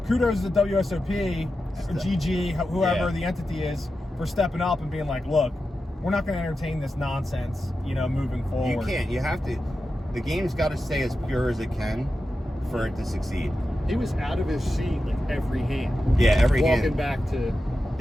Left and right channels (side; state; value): both; normal; correlation 0.91